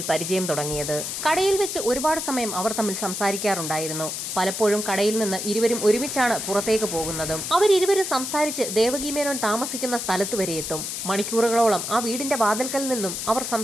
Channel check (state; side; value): noise; left; hiss, 4 dB below the sound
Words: പരിചയം തുടങ്ങിയത്. കടയിൽ വെച്ച് ഒരുപാട് സമയം അവർ തമ്മിൽ സംസാരിക്കാറുണ്ടായിരുന്നു. പലപ്പോഴും കടയിൽ നിന്ന് ഇരുവരും ഒരുമിച്ചാണ് പുറത്തേക്ക് പോകുന്നതും. അവരിരുവരും സംസാരിച്ച് ദേവകി മേനോൻ താമസിക്കുന്ന സ്ഥലത്ത് വരെ എത്തും. മണിക്കൂറുകളോളം ആ വീടിന്റെ വാതിൽക്കൽ നിന്നും അവർ